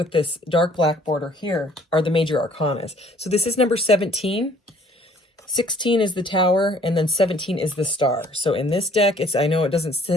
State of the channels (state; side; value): normal; both; correlation 0.58